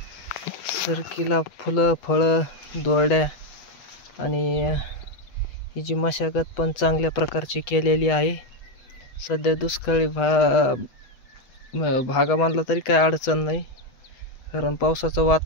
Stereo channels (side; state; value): right; late; 8.1 ms